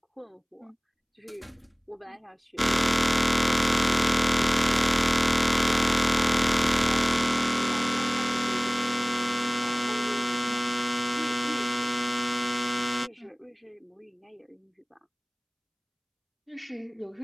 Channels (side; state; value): both; identical; correlation 1.00